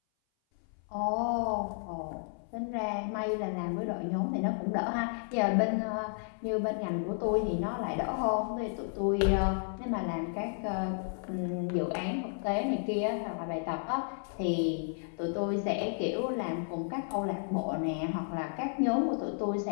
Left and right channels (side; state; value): right; silent; 56 dB below the other